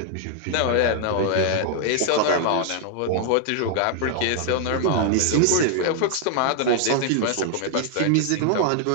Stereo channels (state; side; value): different; both; correlation 0.00